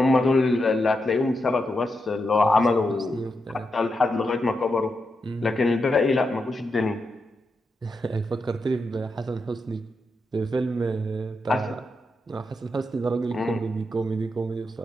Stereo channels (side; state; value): both; normal; correlation 0.85